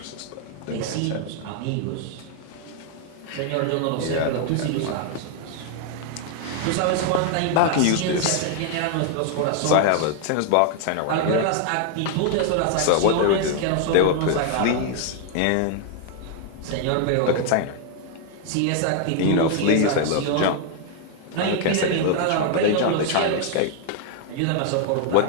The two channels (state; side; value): different; both; correlation 0.00